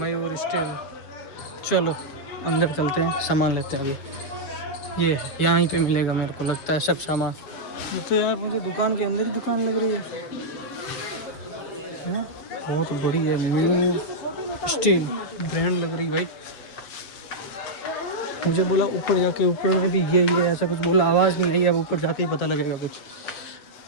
स्टेल। चलो अंदर चलते हैं, सामान लेते हैं। ये यहाँ पे मिलेगा मेरे को लगता है सब सामान। तो यार मुझे दुकान के अंदर ही दुकान लग रही है, बहुत बड़ी है, मयूर स्टील ब्रांड लग रही भाई। मुझे बोला ऊपर जाके, ऊपर में भी ये ऐसा कुछ बोला, आवाज़ नहीं आई। अब ऊपर जाके ही पता लगेगा कुछ।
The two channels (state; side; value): late; right; 7.5 ms